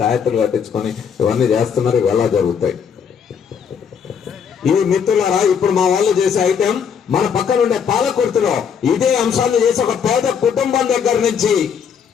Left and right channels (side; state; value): right; quieter; 7.2 dB